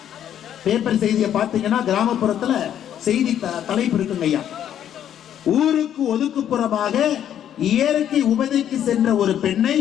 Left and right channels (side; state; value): right; quieter; 10.2 dB